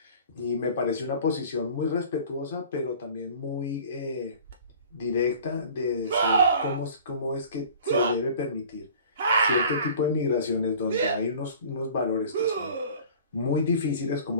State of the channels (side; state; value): both; inverted; correlation -0.46